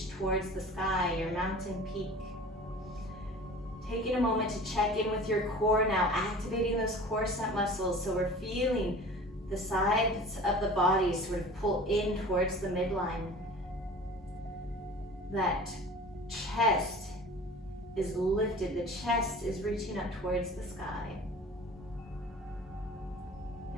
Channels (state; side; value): normal; both; correlation 0.41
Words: towards the sky, your mountain peak. Taking a moment to check in with your core now, activating those core set muscles so we're feeling the sides of the body sort of pull in towards the midline. That chest is lifted, the chest is reaching up towards the sky.